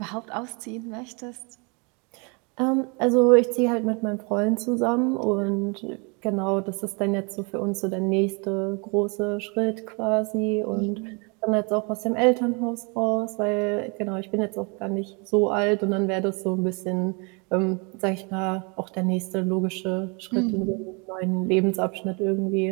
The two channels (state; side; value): quieter; left; 32.3 dB